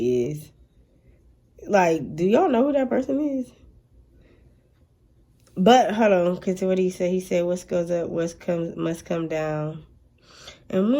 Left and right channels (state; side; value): identical; both; correlation 1.00